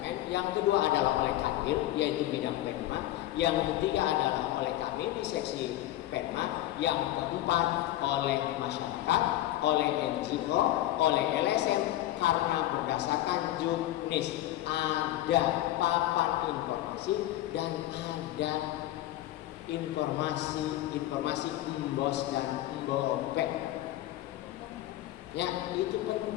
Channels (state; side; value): quieter; right; 14.7 dB